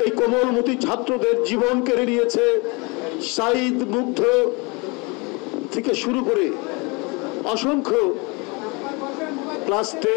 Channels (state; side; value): quieter; right; 28.4 dB